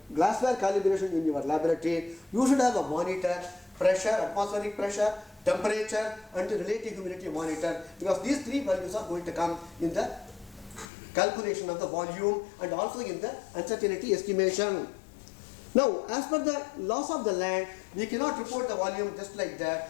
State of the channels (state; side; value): drops out; right; at 10.9 s